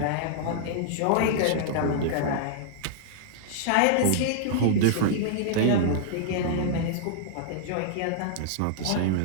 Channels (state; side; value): different; both; correlation -0.01